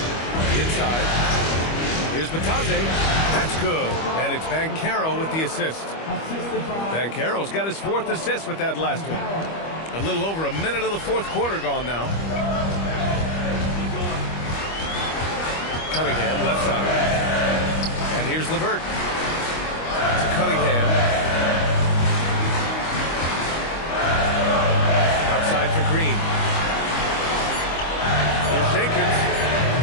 Inside. Here's Matazze. That's good. And it's Banchero with the assist. Banchero's got his 4th assist with that last one. A little over a minute of the 4th quarter gone now. Cunningham, left side. And here's LeVert. To Cunningham. Outside for Green. Here's Jenkins.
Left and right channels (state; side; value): late; right; 25 ms